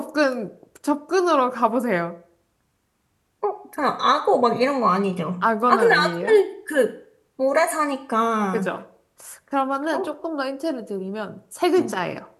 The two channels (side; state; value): both; identical; correlation 1.00